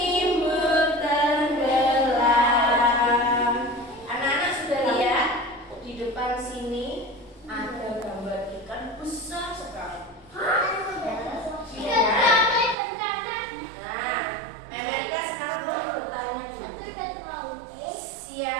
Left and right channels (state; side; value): drops out; left; at 12.8 s